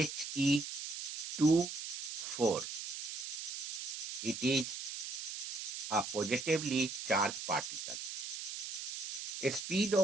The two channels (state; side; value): noise; right; hiss, 6 dB below the sound